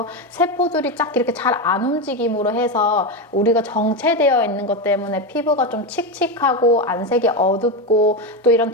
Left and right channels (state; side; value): normal; both; correlation 0.13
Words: 세포들이 쫙 이렇게 잘 안 움직임으로 해서 우리가 정체되어 있는 것 때문에 피부가 좀 칙칙하고 안색이 어둡고 또 이런